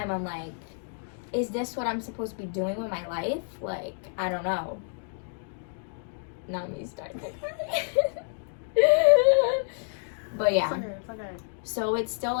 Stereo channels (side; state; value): right; silent; digital silence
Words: I'm like, is this what I'm supposed to be doing with my life? Like, I don't know. Now me starting to cry. But yeah. It's okay. So it's still